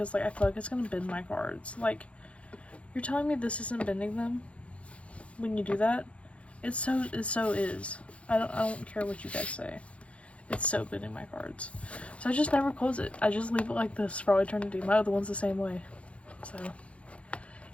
like I feel like it's gonna bend my cards. Like, you're telling me this isn't bending them when you do that? It so is. I don't care what you guys say. It's so bending my cards. So I just never close it. I just leave it like this for all eternity. My other one's the same way. So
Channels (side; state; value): right; late; 0.062 ms